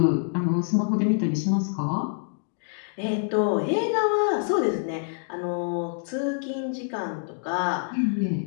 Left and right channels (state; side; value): silent; right; 61 dB below the other